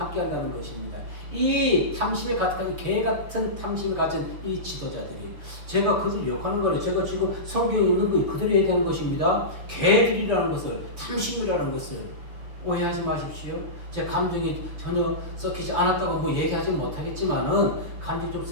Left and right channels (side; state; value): left; late; 6.3 ms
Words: 것입니다. 이 탐심에 가득한 개 같은 탐심을 가진 이 지도자들이 제가 그들 욕하는 거는 제가 지금 성경에 있는 거 그들이 얘기하는 것입니다. 개들이라는 것을 탐심이라는 것을 오해하지 마십시오. 제 감정이 전혀 섞이지 않았다고 뭐 얘기하지 못하겠지만은 감정이 좀